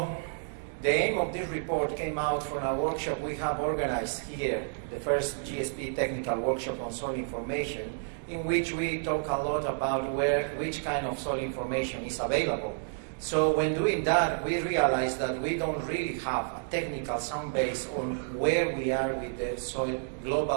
the aim of this report came out from a workshop we have organized here, the first GSP technical workshop on soil information, in which we talk a lot about which kind of soil information is available. So when doing that, we realized that we don't really have a technical sound base on where we are with the soil,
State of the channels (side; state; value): left; silent; digital silence